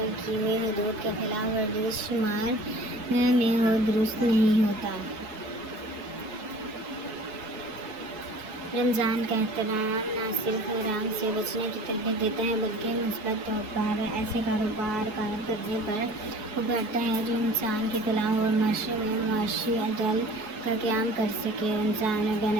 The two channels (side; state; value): left; late; 4.7 ms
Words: کی ہوئی حدود کے خلاف ورزش شمار میں ہو درست نہیں ہوتا. رمضان کا احترام نہ صرف حرام سے بچنے کی تربیت دیتا ہے بلکہ مثبت طور پر ایسے کاروبار کرنے پر ابھارتا ہے جو انسان کی فلاح اور معاشرے میں معاشی عدل کا قیام کر سکے. رمضان بین